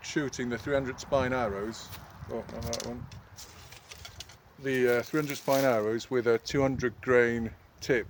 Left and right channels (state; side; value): identical; both; correlation 1.00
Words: shooting the 300 spine arrows. Oh, not that one. The 300 spine arrows with a 200 grain tip.